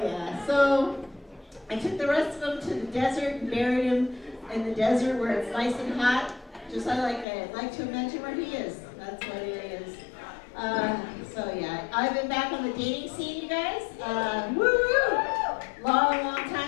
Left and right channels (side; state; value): right; drops out; at 7.2 s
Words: yeah. So I took the rest of them to the desert and buried him in the desert where it's nice and hot. Just I like to imagine where he is. That's what he is. So yeah, I've been back on the dating scene, you guys. Woo! Long